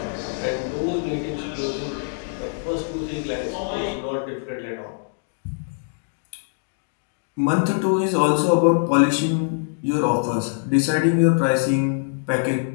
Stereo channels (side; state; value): right; silent; digital silence